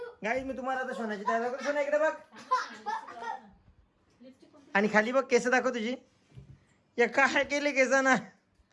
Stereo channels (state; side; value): identical; both; correlation 1.00